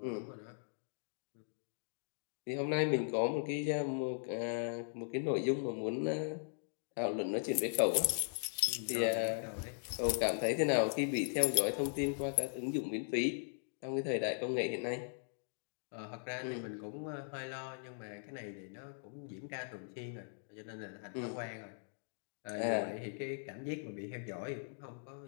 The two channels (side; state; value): right; silent; digital silence